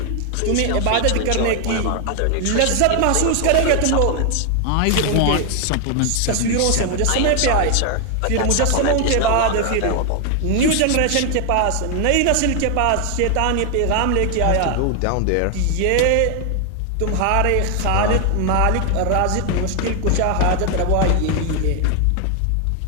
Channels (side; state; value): both; different; correlation 0.00